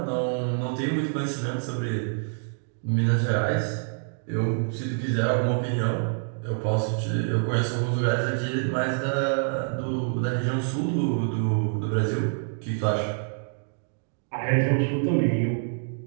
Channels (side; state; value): left; silent; 60 dB below the other